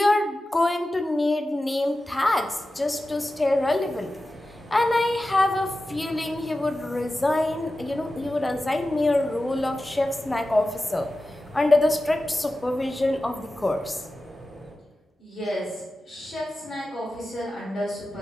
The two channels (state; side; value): normal; both; correlation 0.93